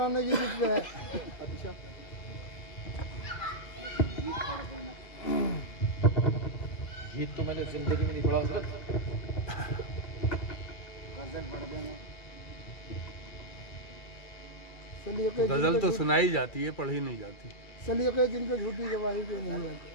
की जिद पे है। अच्छा, गीत तो मैंने जिंदगी में नहीं पढ़ा हज़रत। गजल तो सुनाई जाती है, पढ़ी नहीं जाती। सलीके जिनके झूठी गवाही पे नहीं आती।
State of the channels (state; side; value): late; right; 2.3 ms